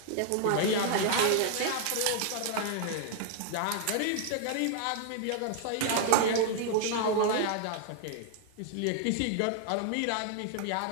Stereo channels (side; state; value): both; different; correlation 0.00